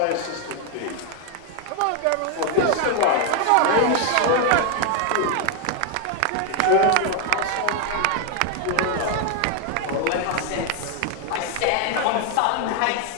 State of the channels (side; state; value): both; different; correlation 0.01